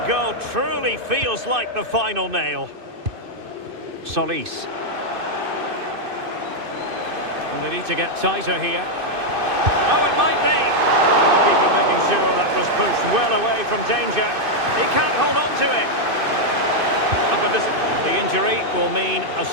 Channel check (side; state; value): left; late; 2.6 ms